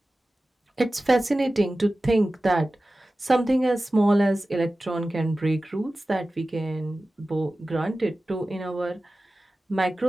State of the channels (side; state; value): both; normal; correlation 0.96